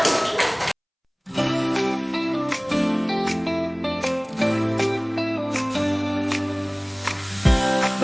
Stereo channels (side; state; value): both; identical; correlation 1.00